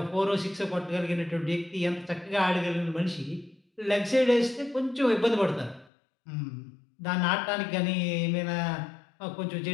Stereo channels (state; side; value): drops out; right; at 5.9 s